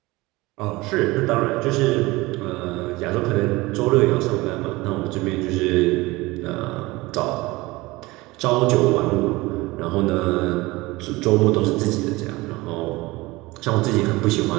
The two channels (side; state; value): left; quieter; 21.3 dB